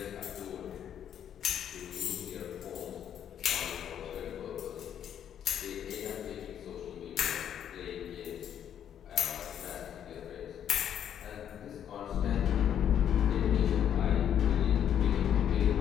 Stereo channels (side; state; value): right; quieter; 9.5 dB